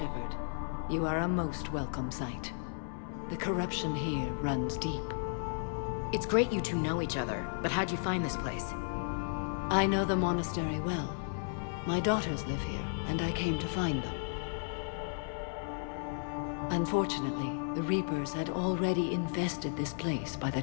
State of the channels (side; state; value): right; silent; 55 dB below the other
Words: You are a most welcome sight. The corruption here runs deep. It's great you two know each other, but how'd you find this place? I know the monastery well. My daughters live here, and I came to find them. Unfortunately, the Reapers had already infested this place by the